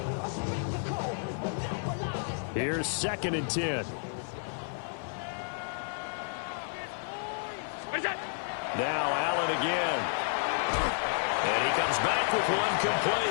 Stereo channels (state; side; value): silent; right; digital silence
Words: Here's 2nd and 10. Now Allen again. And he comes back with one